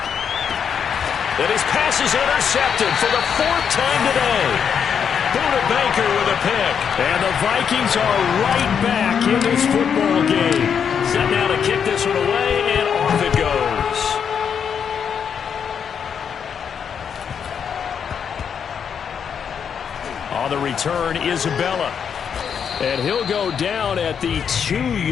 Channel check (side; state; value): right; quieter; 7.4 dB